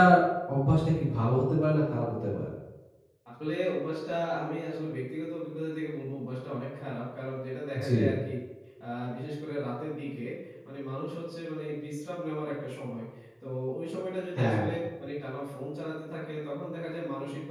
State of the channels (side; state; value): both; identical; correlation 1.00